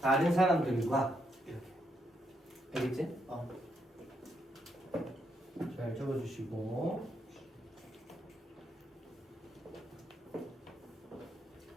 사람들과 이렇게. 알겠지? 잘 적어주시고.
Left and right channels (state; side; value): normal; both; correlation 0.78